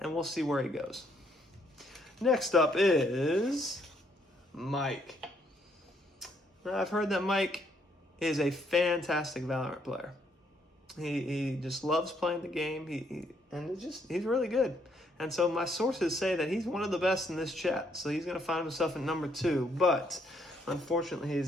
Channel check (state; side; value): normal; both; correlation 0.71